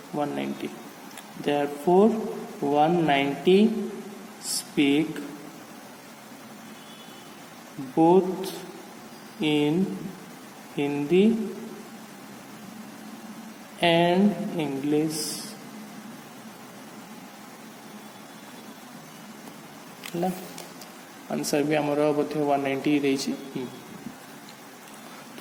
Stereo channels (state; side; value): identical; both; correlation 1.00